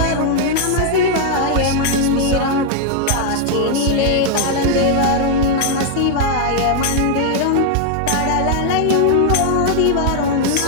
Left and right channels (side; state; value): both; different; correlation 0.00